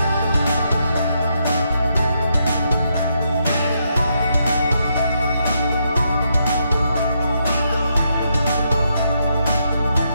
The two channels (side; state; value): both; inverted; correlation -0.79